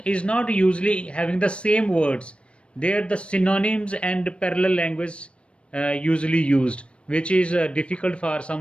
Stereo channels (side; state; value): right; late; 0.059 ms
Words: is not usually having the same words. There the synonyms and parallel language usually used, which is difficult for